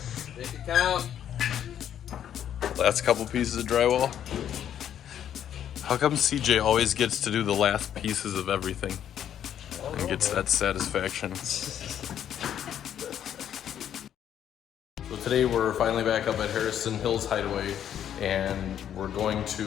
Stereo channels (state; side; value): quieter; right; 9.9 dB